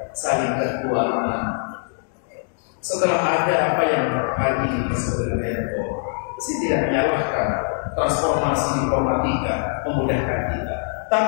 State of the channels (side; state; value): right; silent; 58 dB below the other